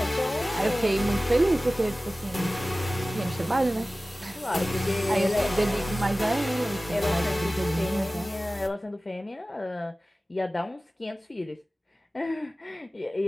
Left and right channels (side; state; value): both; normal; correlation 0.97